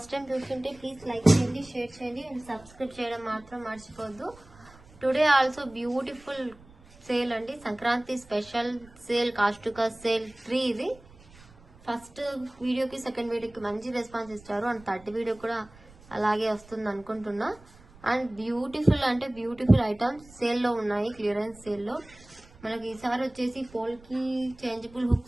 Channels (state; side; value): noise; right; rumble, 24 dB below the sound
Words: టైం చూస్తుంటే ప్లీజ్ లైక్ చేయండి, షేర్ చేయండి అండ్ సబ్స్క్రైబ్ చేయడం మాత్రం మర్చిపోద్దు. టుడే ఆల్సో బ్యూటిఫుల్ సేల్ అండి, సంక్రాంతి స్పెషల్ సేల్, కాస్టుకా సేల్ 3. ఇది ఫస్ట్ వీడియోకి సెకండ్ వీడియోకి మంచి రెస్పాన్స్ ఇచ్చారు అండ్ థర్డ్ వీడియో కూడా అలాగే వస్తుంది అనుకుంటున్నా. అండ్ బ్యూటిఫుల్ అంటే బ్యూటిఫుల్ ఐటమ్స్ సేల్లో ఉన్నాయి, క్లియరెన్స్ సేల్లో. మనకి ఈసారి వచ్చేసి పోల్కి చేంజబుల్